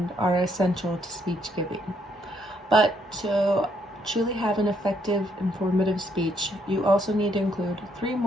are essential to speech giving. But to truly have an effective, informative speech, you also need to include 3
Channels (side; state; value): both; normal; correlation 0.72